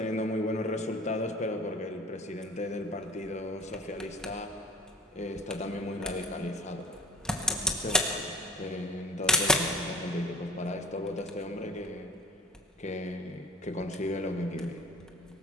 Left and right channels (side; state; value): both; normal; correlation 0.39